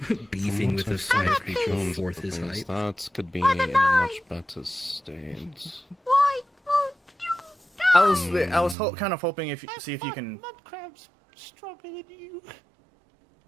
beefing with a fire creature a fourth his height. That could be in a much better state. Why won't you die? I was kind of hoping see if you can. Mudcrab's stronger than you.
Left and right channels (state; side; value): drops out; left; at 8.8 s